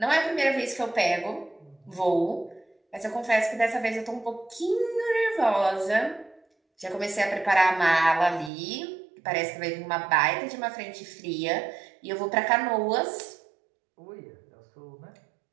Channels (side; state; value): left; drops out; at 8.5 s